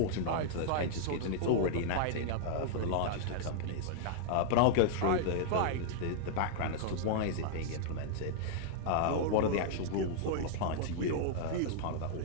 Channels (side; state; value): both; different; correlation -0.01